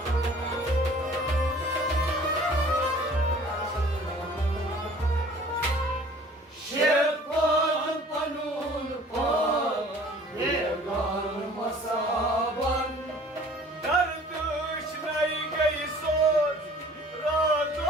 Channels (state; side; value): normal; both; correlation 0.50